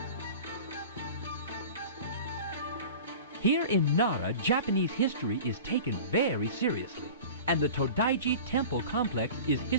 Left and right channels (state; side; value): inverted; both; correlation -0.38